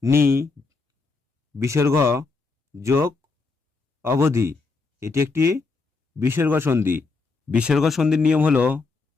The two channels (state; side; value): quieter; right; 4.1 dB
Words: নি বিসর্গ যোগ অবধি, এটি একটি বিসর্গ সন্ধি। বিসর্গ সন্ধির নিয়ম হলো